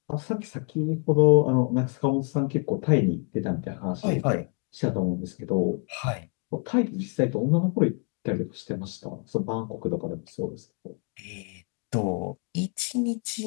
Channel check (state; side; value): quieter; right; 37.3 dB